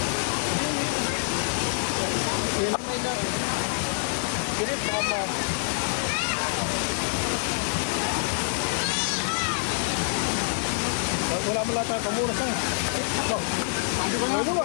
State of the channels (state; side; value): silent; right; digital silence